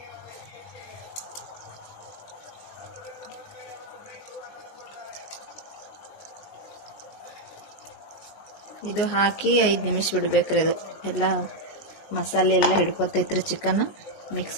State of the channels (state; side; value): late; right; 20 ms